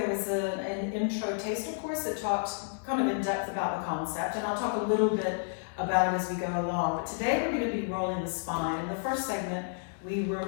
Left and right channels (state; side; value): silent; right; digital silence